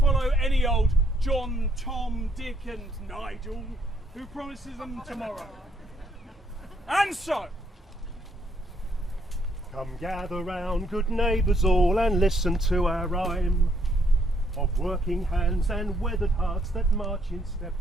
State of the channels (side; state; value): both; normal; correlation 0.70